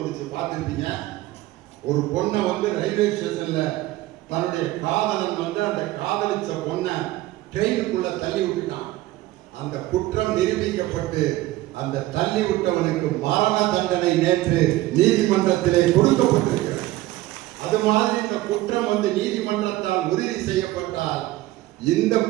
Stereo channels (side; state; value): left; quieter; 17.0 dB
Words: பார்த்துருப்பீங்க. ஒரு பொண்ணை ரயில்வே ஸ்டேஷன்ல தன்னுடைய காதலன் அந்த காதலிச்ச பொண்ணை ட்ரெயினுக்குள்ள தள்ளி விட்டுட்டான். அந்த குற்றம் நிரூபிக்கப்பட்டு அந்த தள்ளி விட்டவனுக்கு மரண தண்டனை நேற்று நீதிமன்றத்திலே கொடுக்கப்பட்டிருக்கிறது. அது மாதிரி இந்த குற்றம் நீதிமன்றத்தால் உறுதி செய்யப்பட்டால் இந்த